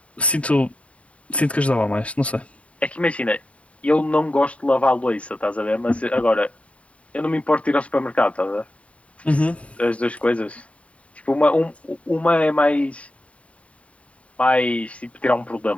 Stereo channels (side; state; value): right; late; 0.065 ms